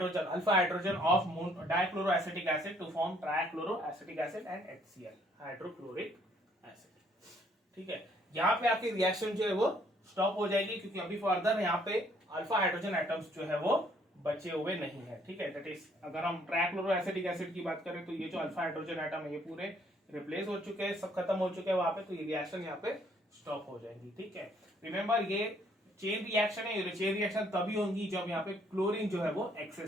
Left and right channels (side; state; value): both; normal; correlation 0.65